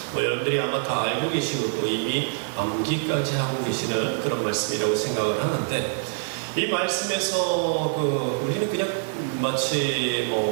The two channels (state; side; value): silent; left; 62 dB below the other